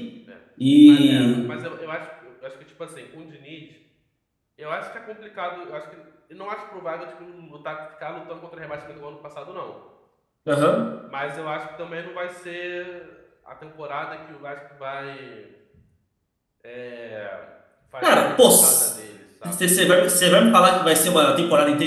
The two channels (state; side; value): identical; both; correlation 1.00